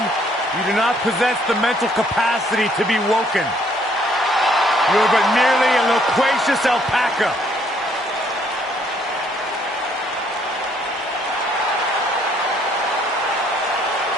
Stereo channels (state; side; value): normal; both; correlation 0.66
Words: You do not possess the mental capacity to be woken. You are but merely a loquacious alpaca.